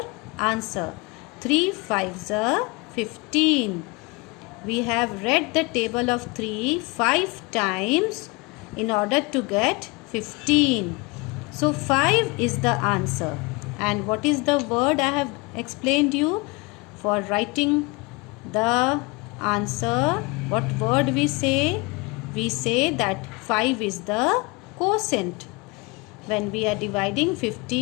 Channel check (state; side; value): quieter; right; 26.9 dB